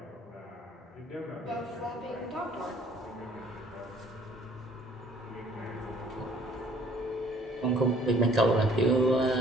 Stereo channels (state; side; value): normal; both; correlation 0.57